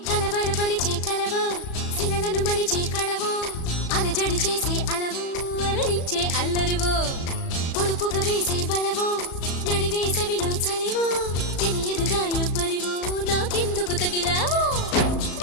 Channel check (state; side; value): late; right; 36 ms